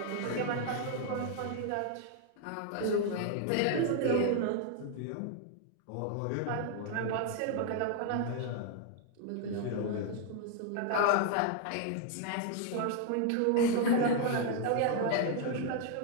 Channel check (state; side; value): different; both; correlation 0.00